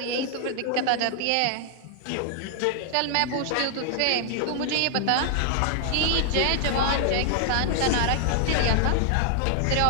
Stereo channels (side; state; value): both; different; correlation 0.00